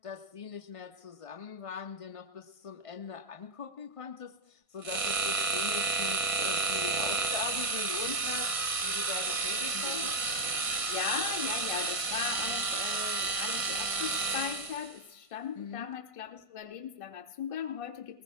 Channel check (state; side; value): late; right; 1.5 ms